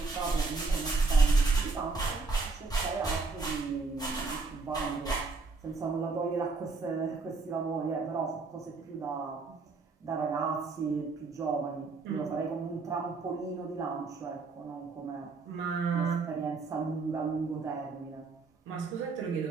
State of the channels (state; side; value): quieter; left; 4.0 dB